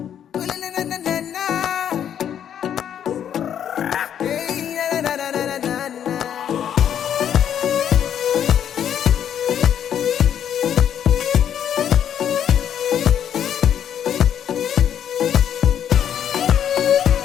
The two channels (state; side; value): quieter; right; 9.4 dB